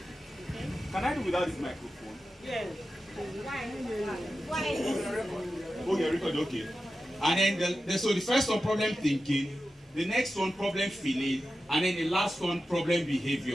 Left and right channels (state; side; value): normal; both; correlation 0.92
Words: Can I do without this microphone? Yes. Okay, record, okay. And then, so the first one, problem thinking. The next one, problem feeling. And then the last one, problem